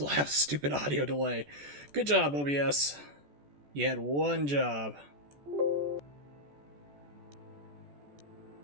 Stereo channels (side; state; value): left; late; 14 ms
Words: have stupid audio delay. Good job, OBS. You had one job.